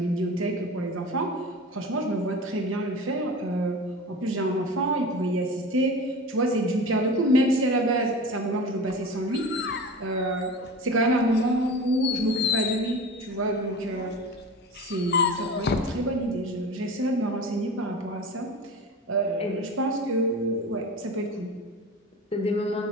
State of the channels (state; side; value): normal; both; correlation 0.33